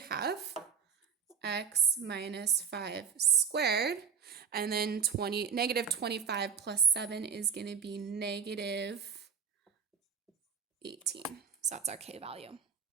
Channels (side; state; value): left; quieter; 6.7 dB